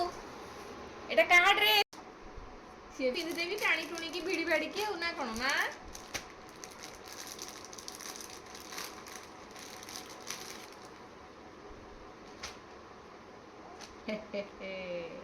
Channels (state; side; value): identical; both; correlation 1.00